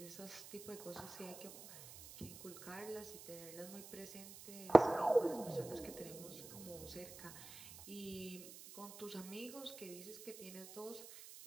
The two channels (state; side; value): noise; right; hiss, 14 dB below the sound